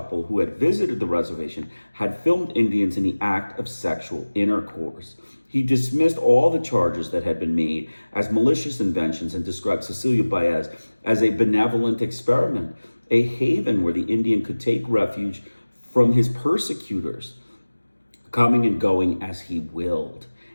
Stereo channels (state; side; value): inverted; both; correlation -1.00